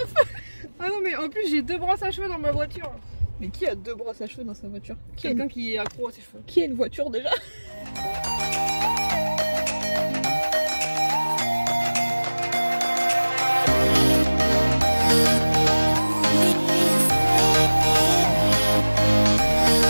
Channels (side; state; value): both; inverted; correlation -1.00